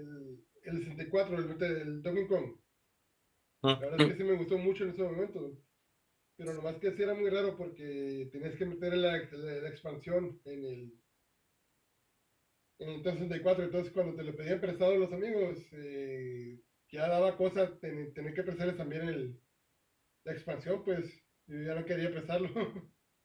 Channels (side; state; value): both; identical; correlation 1.00